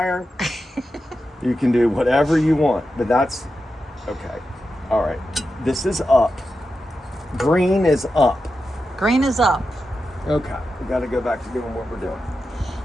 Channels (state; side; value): normal; both; correlation 0.90